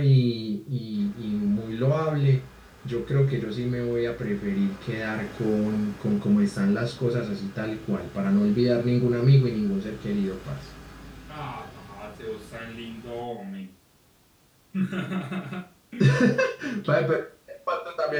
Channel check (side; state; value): both; identical; correlation 1.00